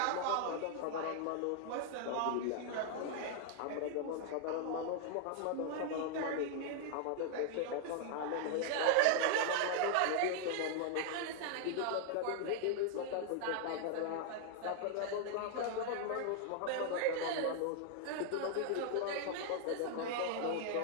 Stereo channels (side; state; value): both; different; correlation 0.00